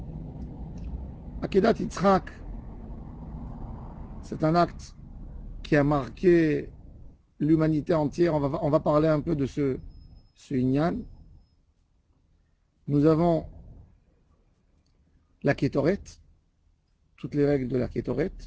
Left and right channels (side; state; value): both; identical; correlation 1.00